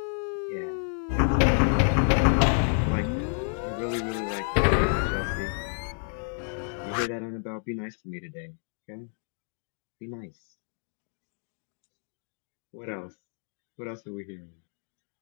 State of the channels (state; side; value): silent; right; 58 dB below the other